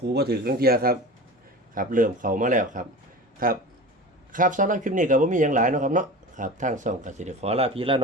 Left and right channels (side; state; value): both; normal; correlation 0.33